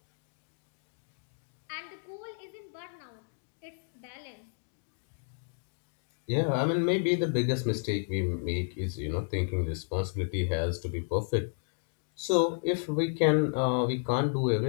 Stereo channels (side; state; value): right; silent; 56 dB below the other